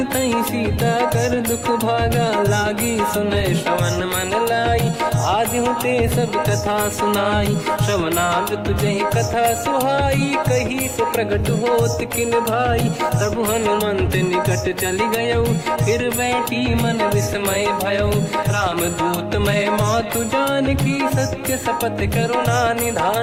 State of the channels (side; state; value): both; identical; correlation 1.00